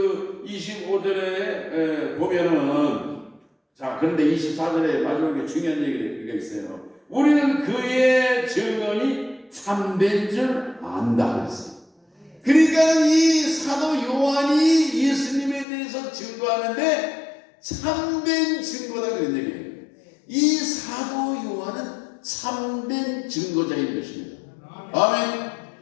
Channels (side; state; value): right; drops out; at 15.7 s